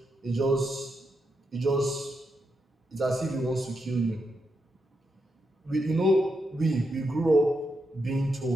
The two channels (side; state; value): both; normal; correlation 0.84